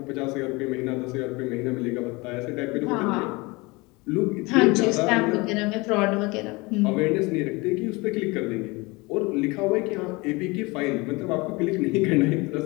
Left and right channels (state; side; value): quieter; right; 24.6 dB